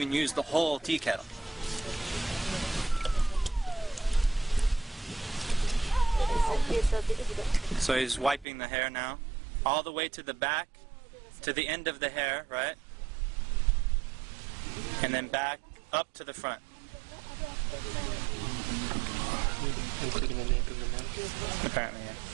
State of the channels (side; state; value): left; drops out; at 8.5 s